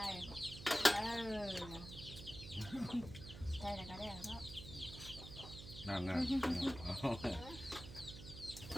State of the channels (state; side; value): noise; right; hum, 12 dB below the sound